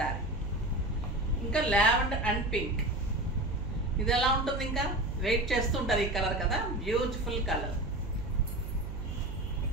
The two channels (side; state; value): right; noise; hum, 7 dB below the sound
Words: ఇంకా లావెండర్ అండ్ పింక్, ఇది ఎలా ఉంటుంది? ఇంకా వెయిట్ చేస్తుంటారు ఈ కలర్ కదా, beautiful colour.